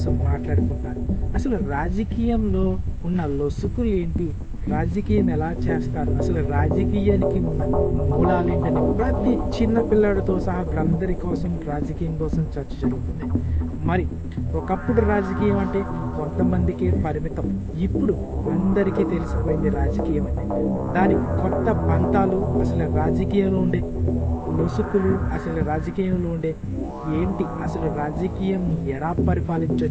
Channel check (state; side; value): identical; both; correlation 1.00